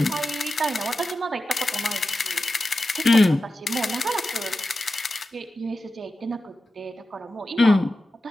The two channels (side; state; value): both; normal; correlation 0.92